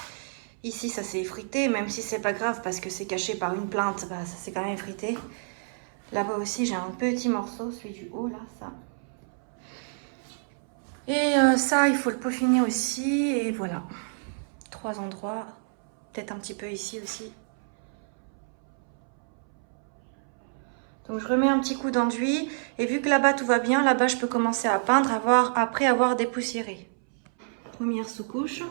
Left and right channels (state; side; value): silent; left; 59 dB below the other